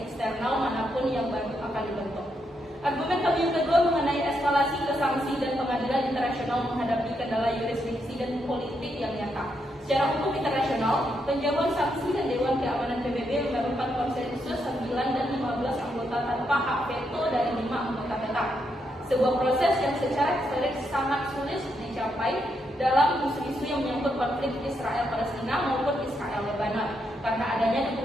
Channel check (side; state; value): both; normal; correlation 0.80